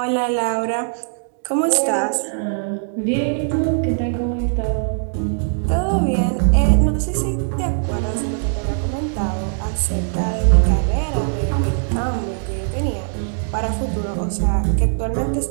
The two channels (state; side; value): silent; left; digital silence